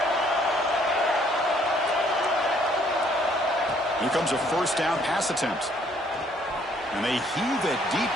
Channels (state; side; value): normal; both; correlation 0.64